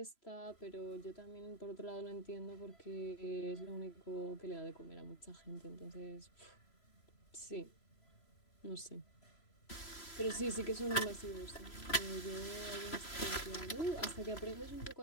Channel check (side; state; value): right; late; 3.0 ms